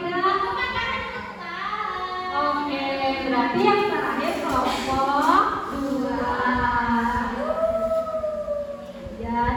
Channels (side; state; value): both; identical; correlation 1.00